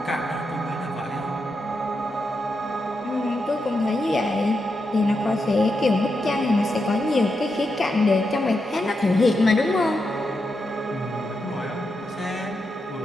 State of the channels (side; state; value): both; normal; correlation 0.85